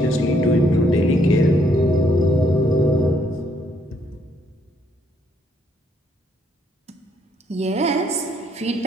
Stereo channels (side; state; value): both; normal; correlation 0.69